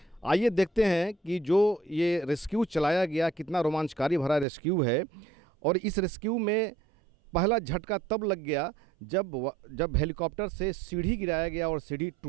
आइए देखते हैं कि जो ये रेस्क्यू चलाया गया कितना रोमांचकारी भरा रेस्क्यू है। और इस रेस्क्यू में पहला झटका तब लग गया जब हेलीकॉप्टर से सीढ़ी गिराया गया और सीढ़ी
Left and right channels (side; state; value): left; drops out; at 4.5 s